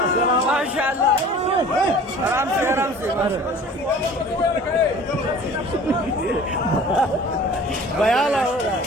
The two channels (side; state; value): both; normal; correlation 0.45